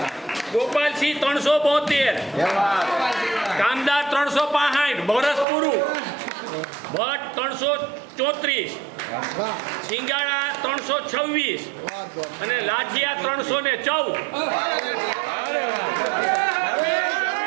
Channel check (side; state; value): left; drops out; at 5.5 s